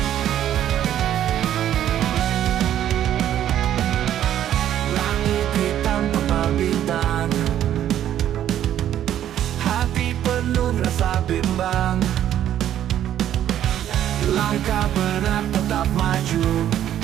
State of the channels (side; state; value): left; quieter; 11.2 dB